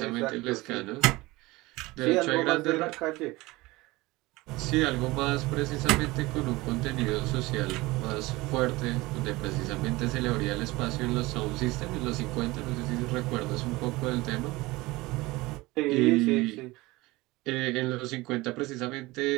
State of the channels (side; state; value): left; quieter; 21.1 dB